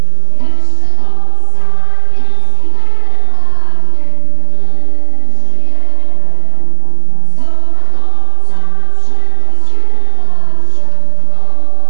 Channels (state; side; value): different; both; correlation 0.00